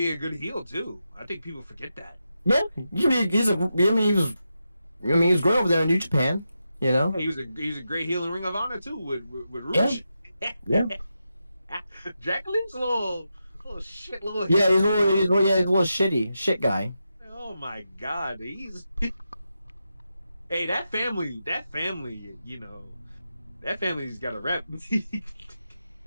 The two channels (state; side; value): inverted; both; correlation -0.88